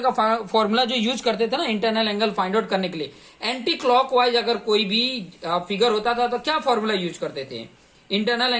का फॉर्मूला जो यूज करते थे ना इंटरनल एंगल फाइंड आउट करने के लिए, एंटी क्लॉकवाइज अगर कोई भी फिगर होता था तो क्या फॉर्मूला यूज करते थे, इंटरनल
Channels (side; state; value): both; identical; correlation 1.00